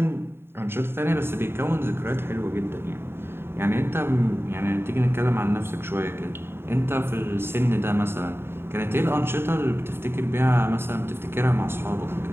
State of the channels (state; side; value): late; left; 0.11 ms